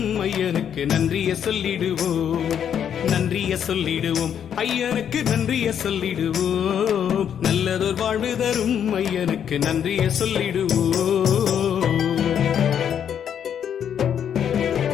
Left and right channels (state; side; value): quieter; right; 8.7 dB